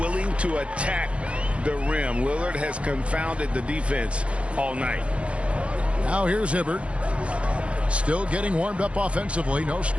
to attack the rim. Lillard has confounded the defense all night. Now here's Hibbert. Still getting warmed up offensively. No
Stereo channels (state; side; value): late; left; 0.061 ms